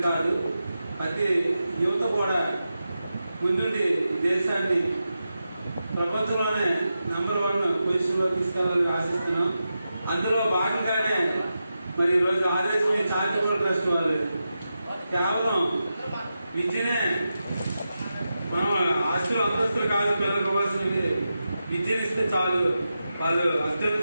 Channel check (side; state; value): both; inverted; correlation -0.90